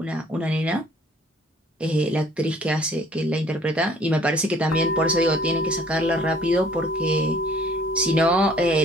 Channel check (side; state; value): both; normal; correlation 0.56